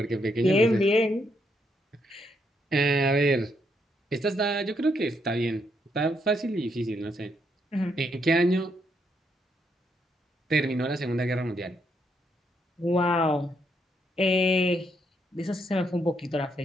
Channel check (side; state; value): both; normal; correlation 0.76